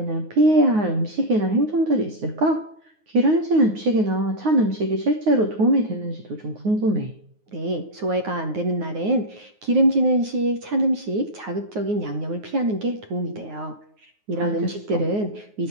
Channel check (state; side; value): late; left; 9.5 ms